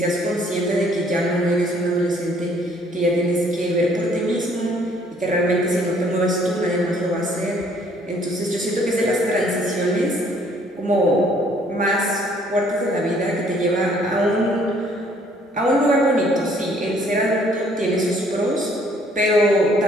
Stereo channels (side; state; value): both; normal; correlation 0.62